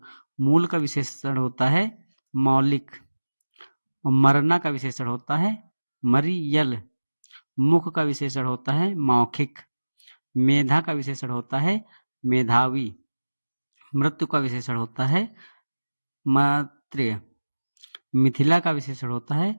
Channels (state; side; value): inverted; both; correlation -1.00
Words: मूल का विशेषण होता है मौलिक। और मरना का विशेषण होता है मरियल। मुख का विशेषण होता है मौखिक। मेधा का विशेषण होता है मेधावी। मृत्यु का विशेषण होता है मैत्रेय। मिथिला का विशेषण होता है